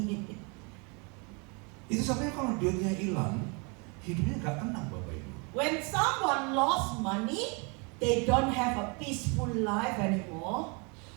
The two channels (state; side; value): quieter; left; 32.4 dB